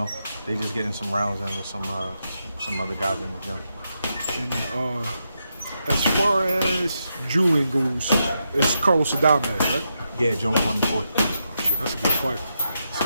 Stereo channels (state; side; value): inverted; both; correlation -0.84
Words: they just getting some rounds in with some other guys in the gym. And as far as Julian goes, it's Carlos Adames, right? Yeah, June 24th. Oh, shit, that's a good fight. It's